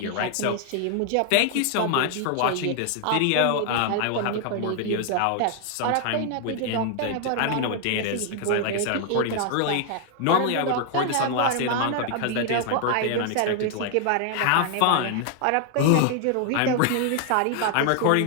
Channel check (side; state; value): both; different; correlation 0.00